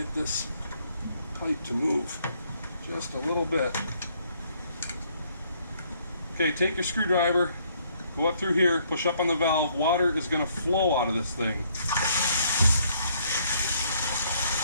this pipe to move just a little bit. Okay, take your screwdriver, go up through here, push up on the valve. Water is going to flow out of this thing.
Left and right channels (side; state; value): both; inverted; correlation -0.67